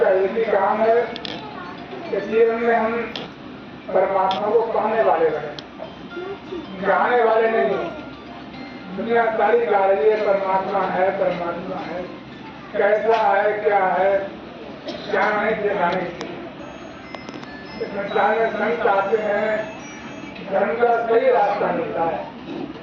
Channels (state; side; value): identical; both; correlation 1.00